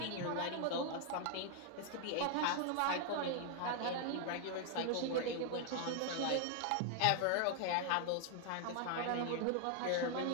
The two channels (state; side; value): different; both; correlation 0.00